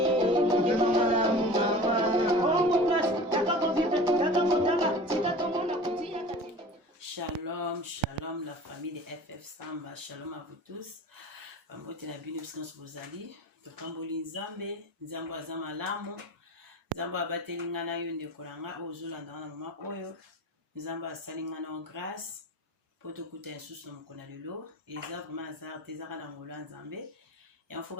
shalom la famille de FF Samba, shalom à vous tous. Mbote na bino biskanso bozali, tokamboli nzambe, nzambo azama lamu, nzambo abateli ngana yo ndeko nanga ozolanda na mama oyo, nzambo asali ngana en grâce, poto kuta nsusu na mokona lelo, eza vraiment azar tezaka na ngolo nzambe. Et en faut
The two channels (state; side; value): normal; both; correlation 0.38